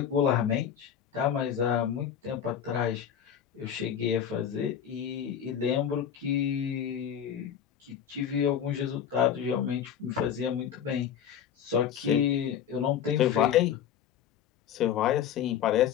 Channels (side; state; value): right; quieter; 9.0 dB